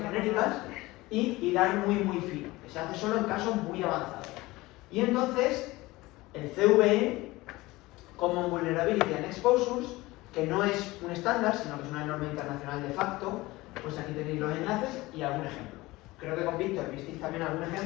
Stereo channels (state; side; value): quieter; right; 20.1 dB